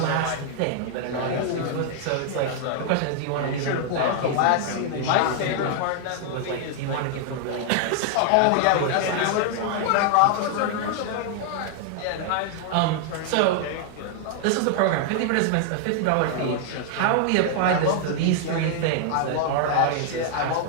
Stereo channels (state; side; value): different; both; correlation 0.00